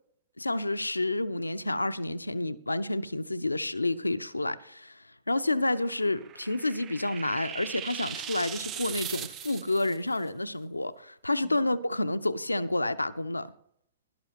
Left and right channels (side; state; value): both; inverted; correlation -0.91